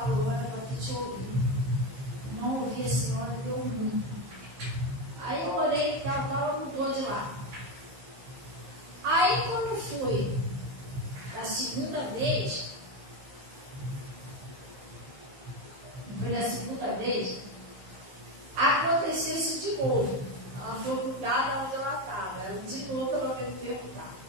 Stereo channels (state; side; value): late; left; 15 ms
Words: era para que te ouvir. Não ouvi a senhora, deu ruim. Aí eu orei e tal, ela mudou de lá. Aí quando foi da segunda vez, aconteceu isso de novo. Ela foi cuidada onde ela estava. Ela de novo ela veio me perguntar: